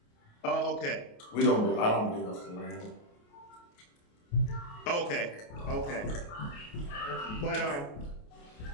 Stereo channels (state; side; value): late; right; 28 ms